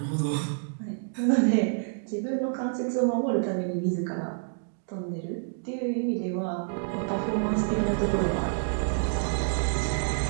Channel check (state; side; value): silent; left; digital silence